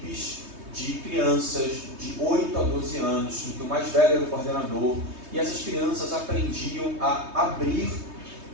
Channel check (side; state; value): left; late; 3.2 ms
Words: de crianças de 8 a 12 anos, em que o mais velho era o coordenador, e essas crianças aprendiam a abrir